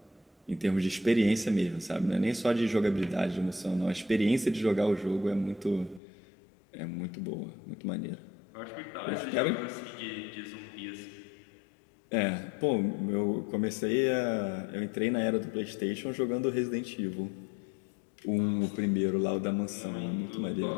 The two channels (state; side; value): drops out; right; at 6.0 s